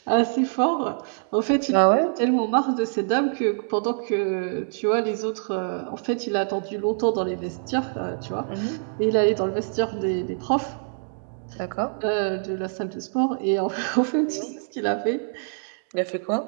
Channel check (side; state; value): left; silent; digital silence